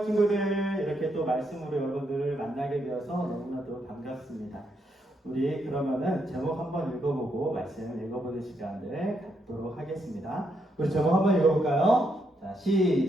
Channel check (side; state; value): both; normal; correlation 0.78